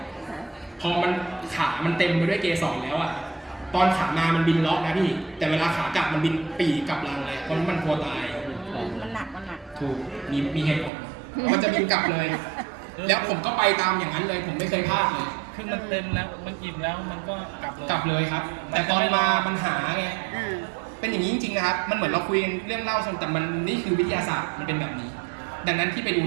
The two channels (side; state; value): left; drops out; at 10.9 s